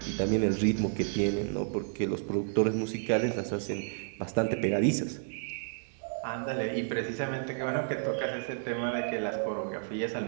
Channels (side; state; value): left; silent; digital silence